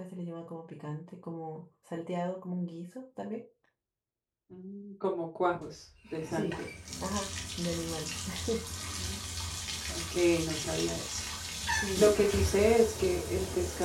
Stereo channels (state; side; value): identical; both; correlation 1.00